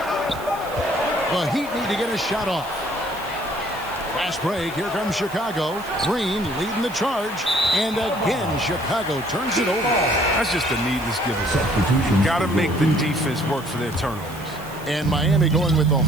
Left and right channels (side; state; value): right; noise; hiss, 19 dB below the sound